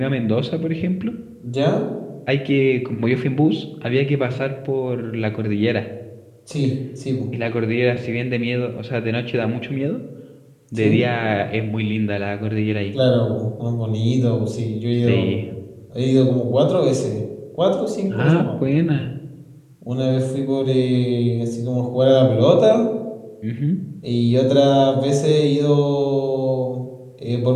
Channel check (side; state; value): both; identical; correlation 1.00